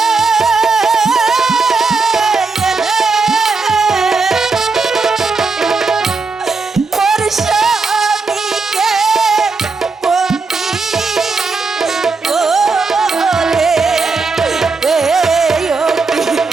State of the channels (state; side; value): quieter; left; 4.2 dB